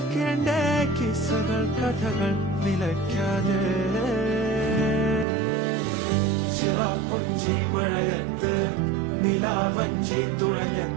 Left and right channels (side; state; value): left; drops out; at 5.2 s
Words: കിസ്സകൾ കഥകൾ നിലയ്ക്കാതെ ചിറാപ്പുഞ്ചി മഴയത്ത് നിലാവഞ്ചി